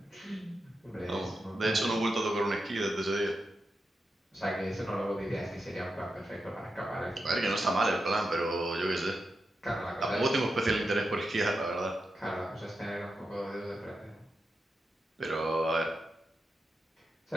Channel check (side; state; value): both; normal; correlation 0.88